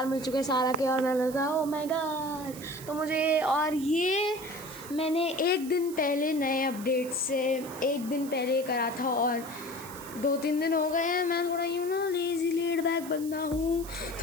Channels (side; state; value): right; noise; hiss, 15 dB below the sound